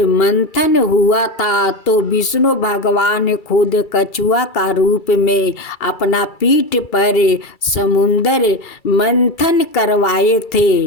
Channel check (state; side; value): late; right; 2.3 ms